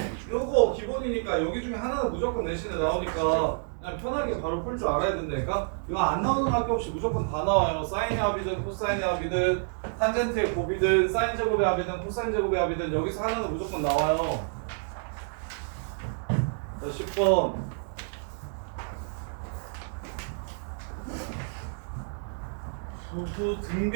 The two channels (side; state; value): left; silent; digital silence